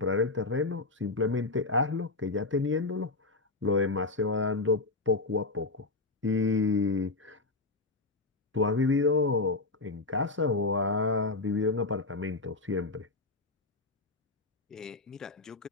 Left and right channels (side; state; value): right; quieter; 3.4 dB